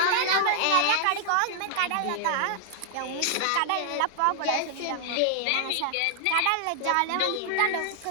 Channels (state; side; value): different; both; correlation -0.01